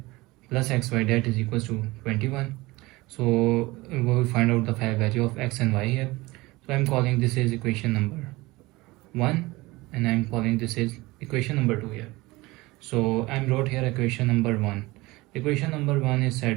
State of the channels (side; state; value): left; quieter; 21.1 dB